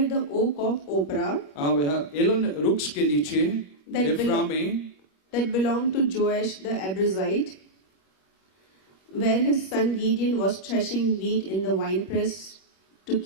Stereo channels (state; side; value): late; right; 21 ms